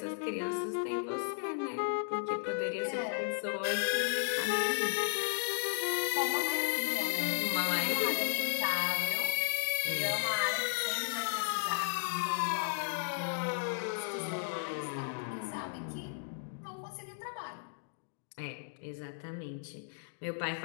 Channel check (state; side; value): silent; right; digital silence